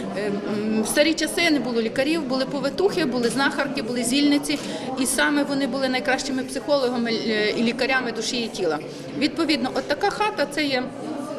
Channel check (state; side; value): identical; both; correlation 1.00